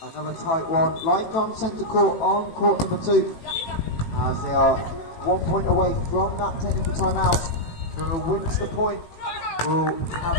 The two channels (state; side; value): late; right; 18 ms